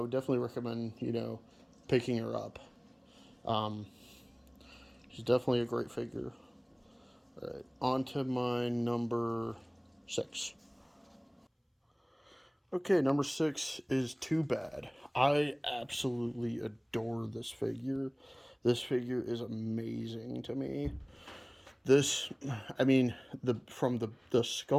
definitely recommend picking her up. Um, she's definitely a great figure. All right, on to my number 6. Okay, number 6 is Too Bad. I absolutely adore this figure. This figure is amazing to me. This, I mean, the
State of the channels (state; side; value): identical; both; correlation 1.00